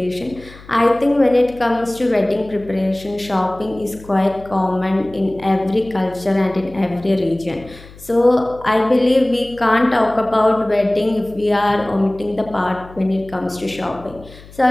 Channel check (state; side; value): noise; left; hum, 20 dB below the sound